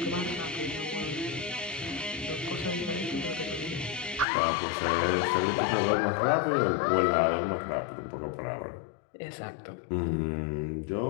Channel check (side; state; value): right; drops out; at 4.2 s